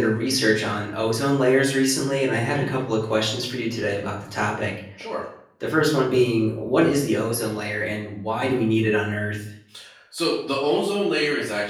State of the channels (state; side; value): identical; both; correlation 1.00